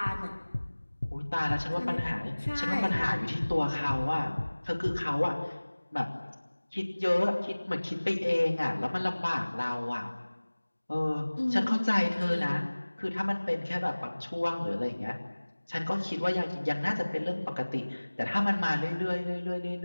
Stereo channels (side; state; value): both; inverted; correlation -1.00